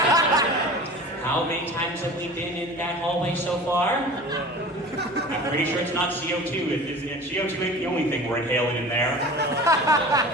How many times have we been in that hallway so far? I'm pretty sure it's not CO2. CO2 ain't the only thing we're inhaling in there.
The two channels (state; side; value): normal; both; correlation 0.38